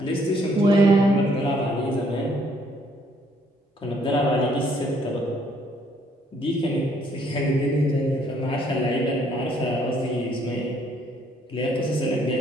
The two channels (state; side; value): normal; both; correlation 0.66